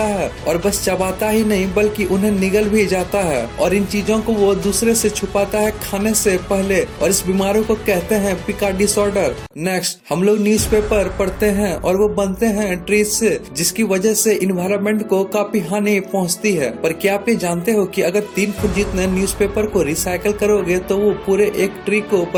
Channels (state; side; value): identical; both; correlation 1.00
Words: है, और बस चबाता ही नहीं बल्कि उन्हें निगल भी जाता है, और इन चीजों को वो दूसरे से छुपाता है खाने से पहले, और इस बीमारी को कहते हैं पिका डिसऑर्डर। नेक्स्ट, हम लोग न्यूज़पेपर पढ़ते हैं और वो बनते हैं ट्रीज से, जिसकी वजह से इन्वायरमेंट को काफी हानि पहुंचती है। पर क्या आप ये जानते हो कि अगर 3 फुट जितने न्यूज़पेपर को रिसाइकल करोगे तो वो पूरे एक ट्री को